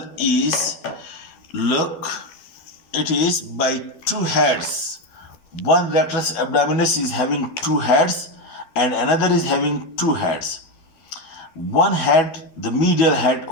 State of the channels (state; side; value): late; right; 12 ms